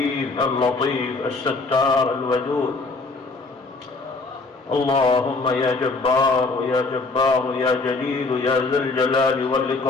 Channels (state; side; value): quieter; right; 3.6 dB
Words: اللطيف الستار الودود. اللهم يا جبار يا جبار يا جليل يا ذا الجلال